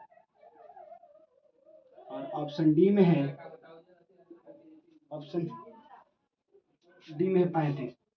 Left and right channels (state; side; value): identical; both; correlation 1.00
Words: और ऑप्शन डी में है 35।